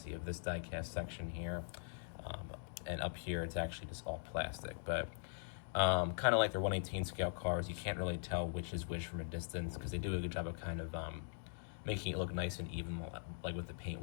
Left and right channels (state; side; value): silent; right; digital silence